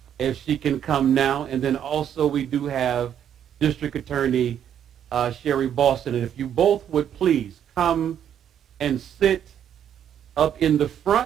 if she can come now. And then also we do have District Attorney Sherry Boston. And if you both would please come and sit up in the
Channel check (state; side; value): quieter; left; 9.5 dB